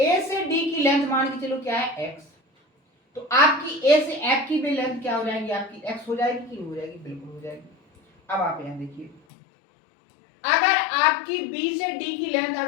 से डी की लेंथ मान के चलो क्या है x, तो आपकी ए से एफ की भी लेंथ क्या हो जाएगी आपकी x हो जाएगी कि नहीं हो जाएगी, बिल्कुल हो जाएगी। अब आप यहां देखिए, अगर आपकी बी से डी की लेंथ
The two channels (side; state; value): right; drops out; at 9.2 s